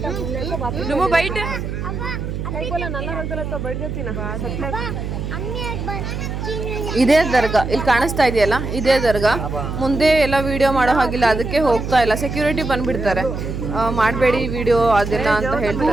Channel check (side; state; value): right; noise; hum, 5 dB below the sound